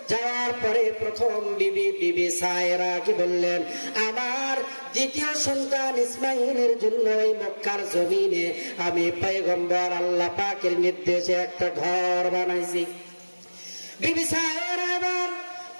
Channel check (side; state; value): both; inverted; correlation -1.00